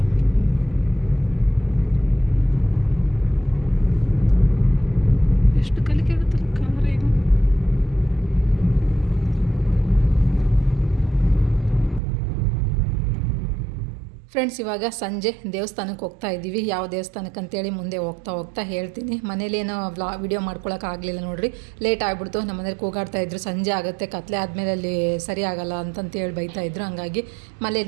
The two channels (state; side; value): drops out; left; at 12.0 s